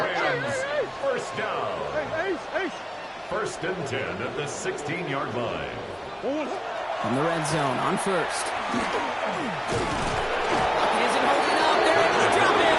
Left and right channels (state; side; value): identical; both; correlation 1.00